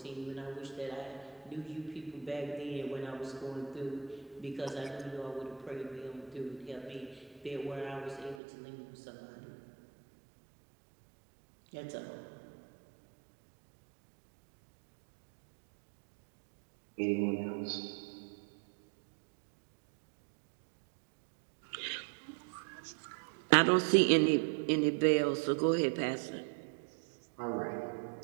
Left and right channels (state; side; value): drops out; left; at 8.4 s